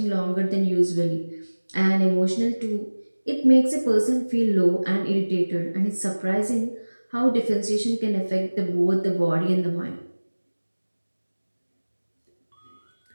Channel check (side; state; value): both; inverted; correlation -1.00